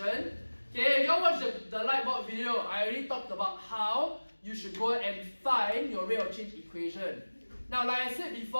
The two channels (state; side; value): inverted; both; correlation -1.00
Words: Okay, if you all watched the lightboard video, I already talked about how you should go and find your rate of change equation. Now, like I said